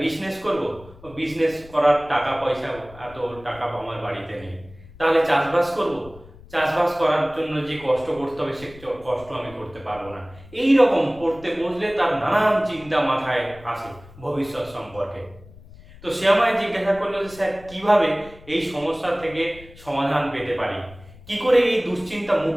বিজনেস করব। বিজনেস করার টাকা পয়সা, এত টাকা আমার বাড়িতে নেই। তাহলে চাষবাস করব, চাষবাস করার জন্য যে কষ্ট করতে হবে সে কষ্ট আমি করতে পারবো না। এই রকম পড়তে বসলে তার নানান চিন্তা মাথায় আসে ভবিষ্যৎ সম্পর্কে। তো সে আমায় জিজ্ঞাসা করলো যে স্যার কিভাবে এই সমস্যা থেকে সমাধান পেতে পারি, কি করে এই দুশ্চিন্তা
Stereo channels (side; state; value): left; noise; rumble, 21 dB below the sound